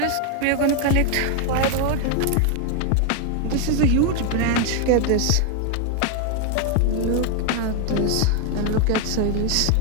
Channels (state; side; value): different; both; correlation 0.00